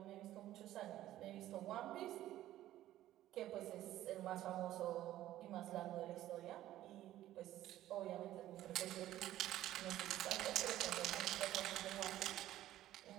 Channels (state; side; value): quieter; left; 13.8 dB